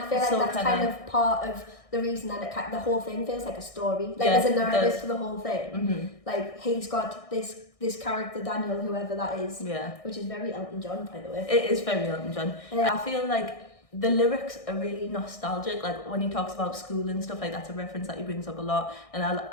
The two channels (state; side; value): late; right; 1.6 ms